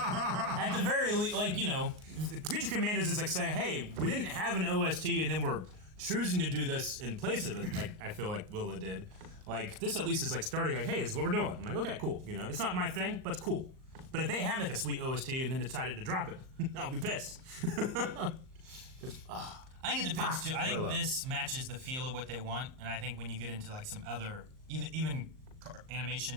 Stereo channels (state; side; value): late; left; 38 ms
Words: At the very least, like, you know, Creature Commandos is like saying, hey, we didn't have an OST and then we're choosing to do this in place of it, like I feel like Willow did. Like, this at least is like starting like, hey, this is what we're doing. I'm like, okay, cool. You know, it's not my thing, but it's cool. But if they have like a sweet OST and then decided to drop it, I'll be pissed. I think it depends too. I think this matches the feel of what they want, and I think when you get into like some other, even